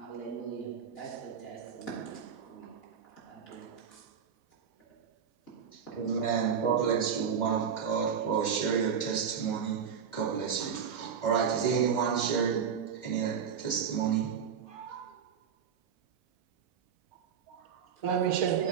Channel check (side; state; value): left; quieter; 7.3 dB